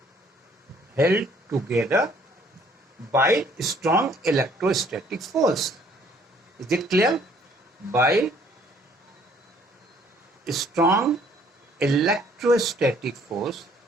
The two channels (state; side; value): normal; both; correlation 0.61